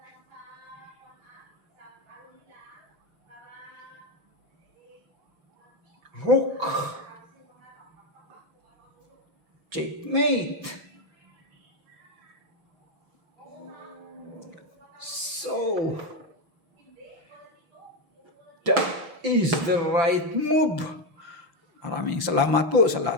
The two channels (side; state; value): left; late; 6.0 ms